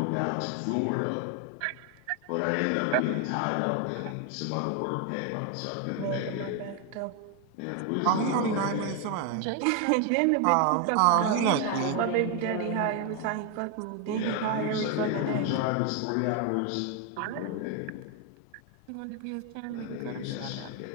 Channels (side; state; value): both; different; correlation 0.01